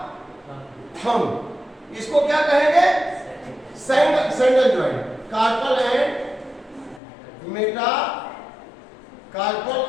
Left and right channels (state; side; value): drops out; right; at 7.0 s